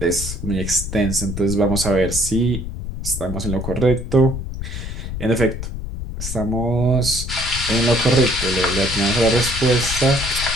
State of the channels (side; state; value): left; noise; rumble, 6 dB below the sound